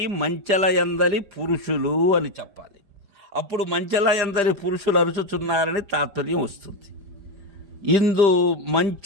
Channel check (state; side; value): late; left; 5.0 ms